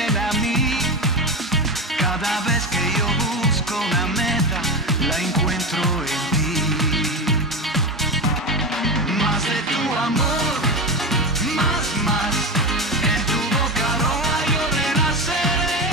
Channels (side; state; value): both; normal; correlation 0.20